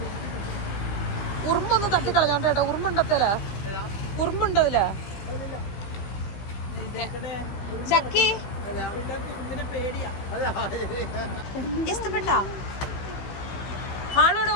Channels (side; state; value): right; late; 16 ms